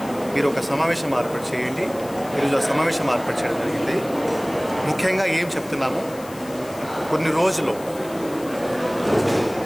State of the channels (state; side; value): noise; left; hiss, 19 dB below the sound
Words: మీరు ఒక సమావేశం ఏర్పాటు చేయండి. ఈరోజు ఆ సమావేశం ఏర్పాటు చేయడం జరిగింది. ముఖ్యంగా ఏం చెప్తున్నాము, కొన్ని రోజులు